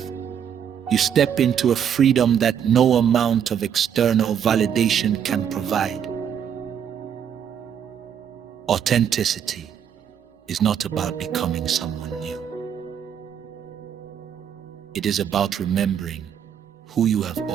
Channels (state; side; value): quieter; left; 8.5 dB